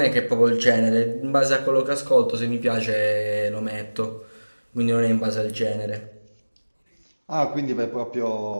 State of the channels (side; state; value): both; inverted; correlation -1.00